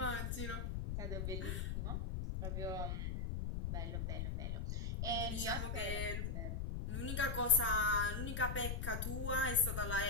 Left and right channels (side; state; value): left; noise; rumble, 1 dB below the sound